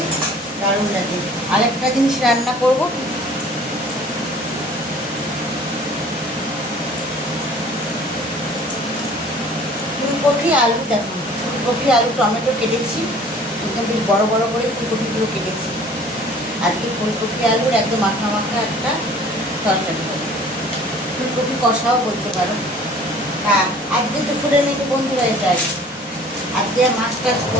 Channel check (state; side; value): normal; both; correlation 0.50